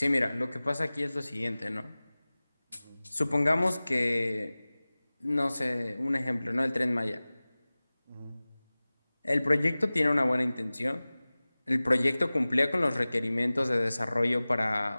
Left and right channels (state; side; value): inverted; both; correlation -0.99